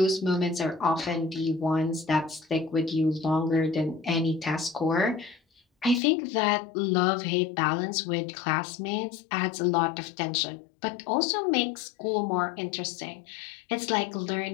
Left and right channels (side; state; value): right; drops out; at 6.0 s